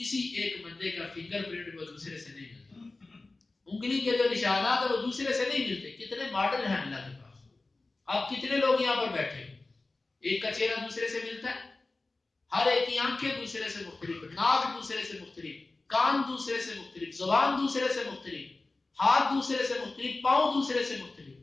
کسی ایک بندے کا فنگر پرنٹ وہ دوسرے سے نہیں ملتا، انگلی کے جو نشانات ہیں وہ دوسرے سے نہیں ملتے۔ کتنے ماڈل ہیں اللہ کے پاس، آپ کتنے لوگ یہاں پر بیٹھے ہو، ایک کا چہرہ دوسرے سے ملتا ہے، ہر ایک کی آنکھیں دوسرے سے مختلف، ناک دوسرے سے مختلف، کان دوسرے سے مختلف، زبان دوسرے سے مختلف، ہاتھ دوسرے سے مختلف، پاؤں دوسرے سے مختلف،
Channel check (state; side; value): quieter; right; 3.3 dB